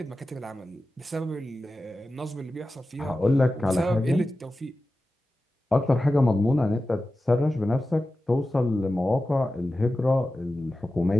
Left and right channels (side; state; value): both; normal; correlation 0.94